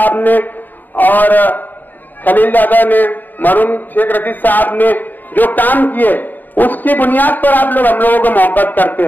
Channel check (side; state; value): right; late; 0.088 ms